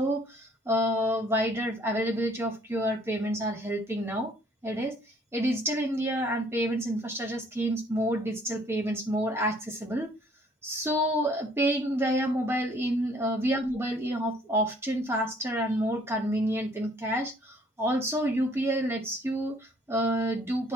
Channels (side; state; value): both; normal; correlation 0.60